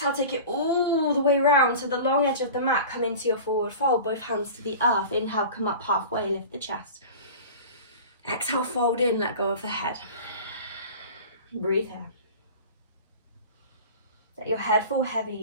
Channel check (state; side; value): inverted; both; correlation -0.36